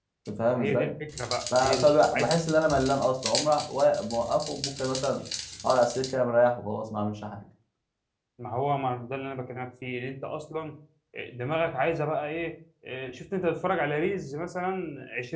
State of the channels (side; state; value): both; identical; correlation 1.00